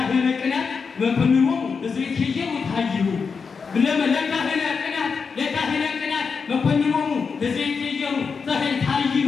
ቅናት መኮንኖሙ ለዘይትየው ታይሁ ለካህነ ቅናት መኮንኖሙ ለዘይትየው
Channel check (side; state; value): right; quieter; 5.4 dB